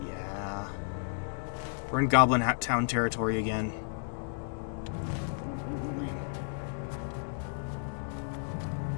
Yeah. We're in Goblin Town territory again.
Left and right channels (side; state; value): right; silent; digital silence